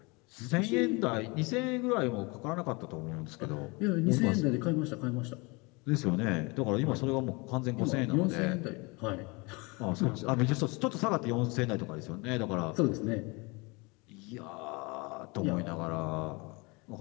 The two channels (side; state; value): right; quieter; 27.5 dB